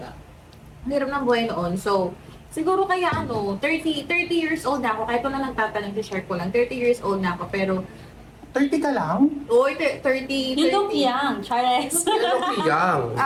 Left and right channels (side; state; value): both; identical; correlation 1.00